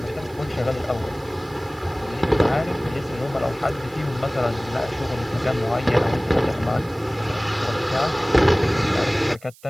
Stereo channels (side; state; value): right; noise; hiss, 25 dB below the sound